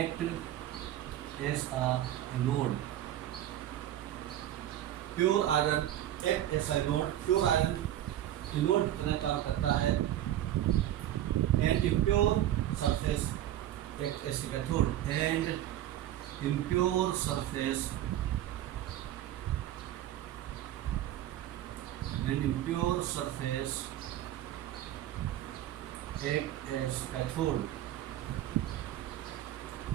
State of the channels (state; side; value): quieter; left; 12.6 dB